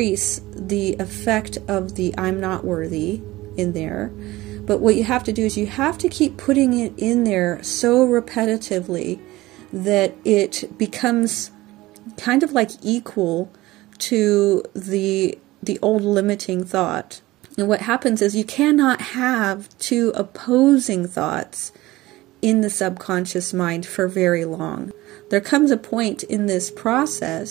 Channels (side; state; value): left; quieter; 18.5 dB